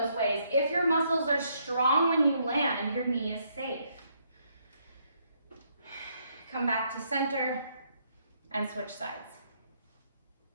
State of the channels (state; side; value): inverted; both; correlation -0.72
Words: ways. If your muscles are strong when you land, your knee is safe. Come back to center and switch sides.